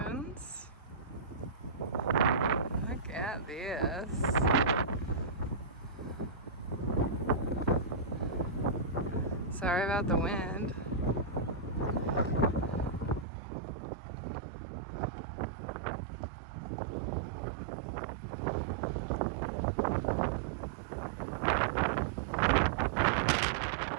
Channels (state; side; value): drops out; left; at 13.2 s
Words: Look at this. Sorry about the wind.